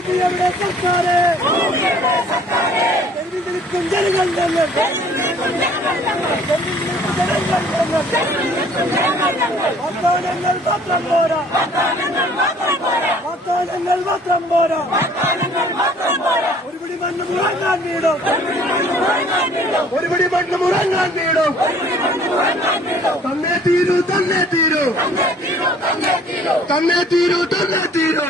തെരുവിൽ നിൽക്കും ജനങ്ങൾ ഞങ്ങൾ, വാഗ്ദാനങ്ങൾ മാത്രം പോരാ, വാഗ്ദാനങ്ങൾ മാത്രം പോരാ, ഒരുപിടി മണ്ണ് മുറങ്ങാൻ വീടും, ഒരുപിടി മണ്ണ് മുറങ്ങാൻ വീടും, തന്നെ തീരൂ, തന്നെ തീരൂ, തന്നെ തീരൂ, തന്നെ തീരൂ.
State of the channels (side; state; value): both; normal; correlation 0.55